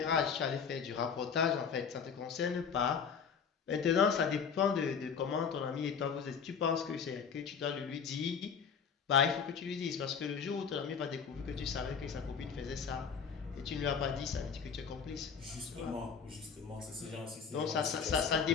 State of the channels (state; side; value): quieter; right; 6.5 dB